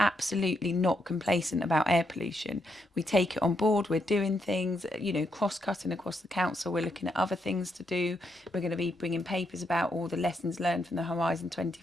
not complacent about air pollution. We take it on board. We're doing things, cross-cutting across the council. We're looking at other things to do. We're going to be bringing papers about all the lessons learned from the Horizon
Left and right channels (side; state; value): both; normal; correlation 0.79